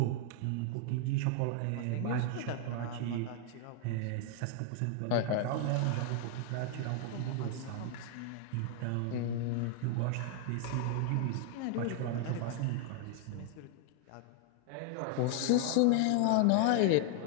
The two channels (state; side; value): different; both; correlation 0.00